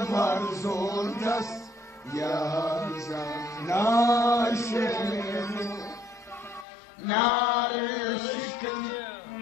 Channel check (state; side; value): drops out; right; at 6.7 s